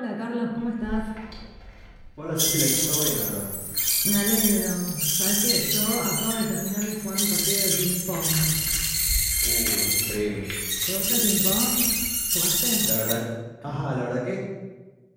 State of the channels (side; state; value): both; identical; correlation 1.00